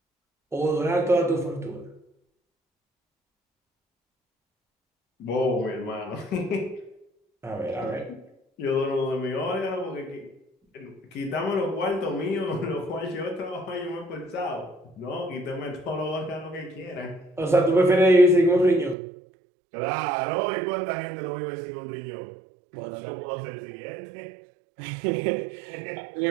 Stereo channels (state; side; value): drops out; left; at 18.9 s